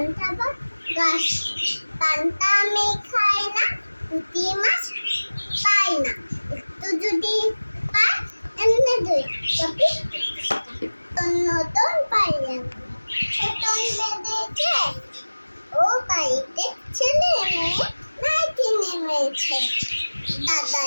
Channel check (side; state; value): both; inverted; correlation -1.00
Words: ভাত গাছ। পান্তা আমি খাই না, পুঁটি মাছ পাই না। একটু যদি পাই এমনি দুই কপি নতুন পাইলাম। ছোটন বেঁধেছে, ও বাড়িতে ছেলে মেয়ে নাইটি নেমেছে।